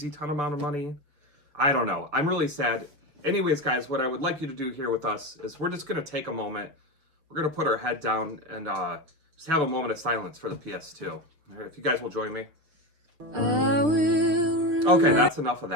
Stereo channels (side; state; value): left; late; 6.7 ms